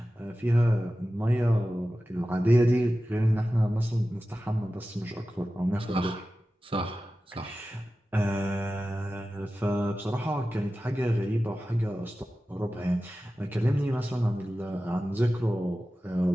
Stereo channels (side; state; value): both; normal; correlation 0.94